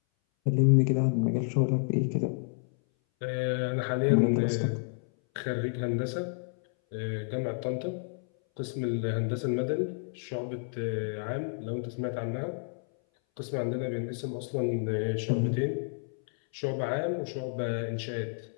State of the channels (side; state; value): right; silent; 58 dB below the other